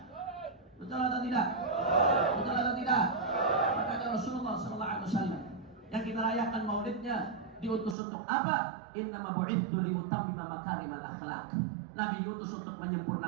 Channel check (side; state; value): left; drops out; at 8.0 s